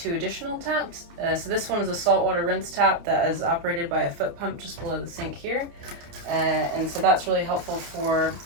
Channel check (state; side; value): late; left; 29 ms